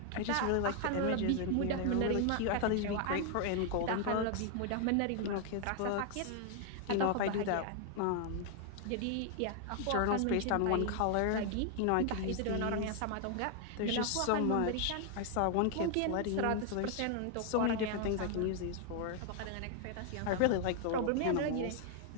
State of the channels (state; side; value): different; both; correlation 0.00